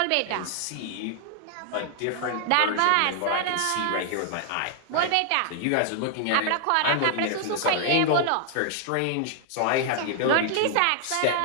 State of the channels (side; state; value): both; different; correlation 0.00